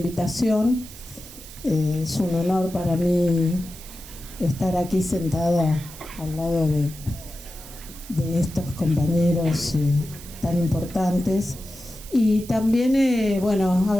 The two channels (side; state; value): right; noise; hiss, 17 dB below the sound